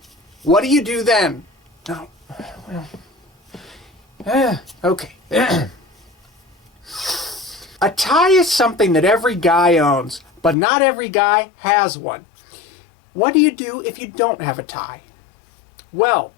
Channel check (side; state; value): right; drops out; at 10.6 s